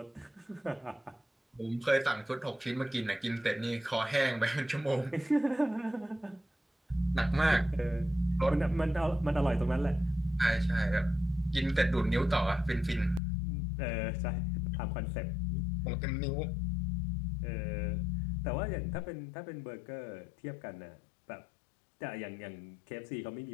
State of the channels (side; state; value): right; drops out; at 13.2 s